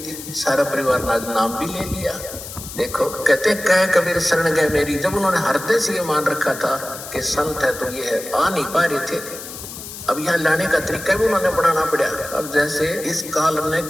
सारा परिवार ने आज नाम भी ले लिया। देखो कहते कह कबीर शरण गए मेरी, जब उन्होंने हृदय से ये मान रखा था कि संत है तो ये है, आ नहीं पा रहे थे। अब यहाँ लाने का तरीका भी उन्होंने बढ़ाना पड़ा। अब जैसे इस काल ने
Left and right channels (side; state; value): left; noise; hiss, 11 dB below the sound